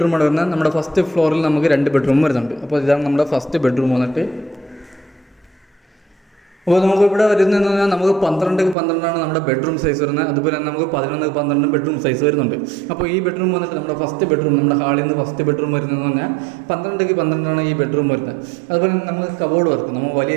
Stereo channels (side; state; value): left; drops out; at 8.8 s